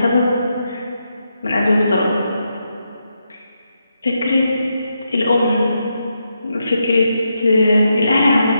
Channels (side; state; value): both; inverted; correlation -0.83